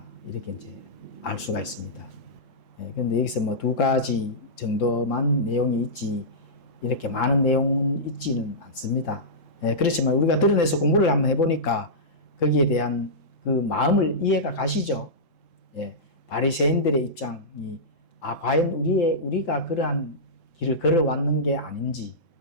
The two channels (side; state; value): right; late; 3.7 ms